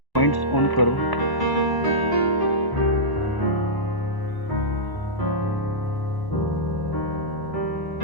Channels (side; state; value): right; late; 1.0 ms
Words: points on curve.